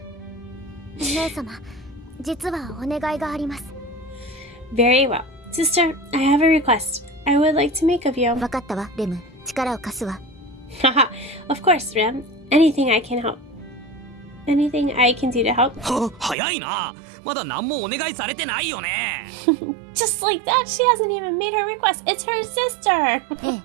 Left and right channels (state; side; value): drops out; left; at 16.4 s